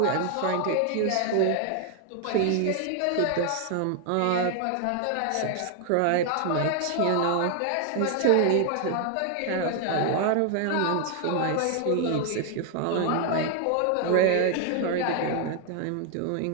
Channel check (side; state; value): both; different; correlation 0.00